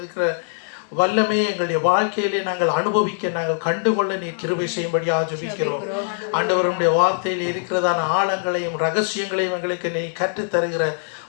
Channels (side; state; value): right; silent; digital silence